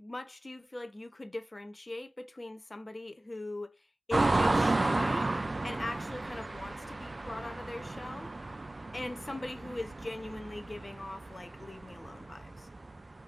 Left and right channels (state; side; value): normal; both; correlation 0.98